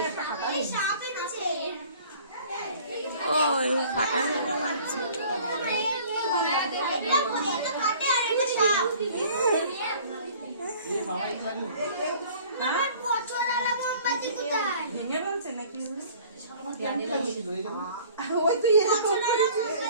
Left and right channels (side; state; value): both; inverted; correlation -0.50